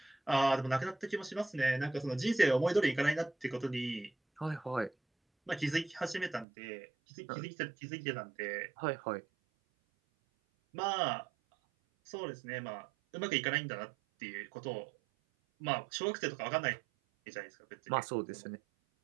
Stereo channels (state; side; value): drops out; left; at 6.5 s